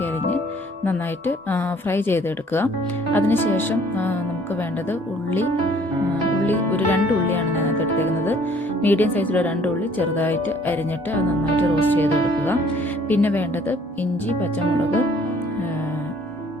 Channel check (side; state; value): both; normal; correlation 0.58